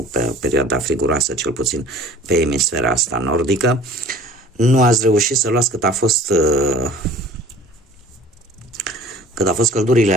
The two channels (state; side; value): normal; both; correlation 0.47